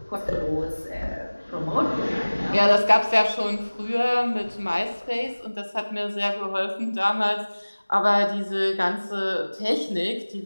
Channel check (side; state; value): both; inverted; correlation -1.00